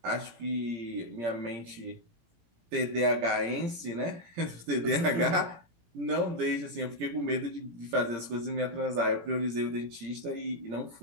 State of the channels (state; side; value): late; left; 17 ms